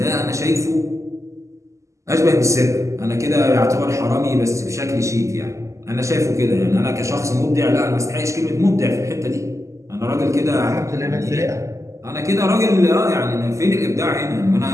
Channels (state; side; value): late; left; 0.15 ms